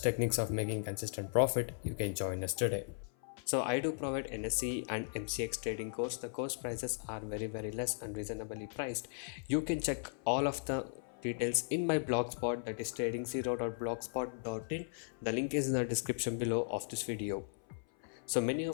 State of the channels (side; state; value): right; silent; 53 dB below the other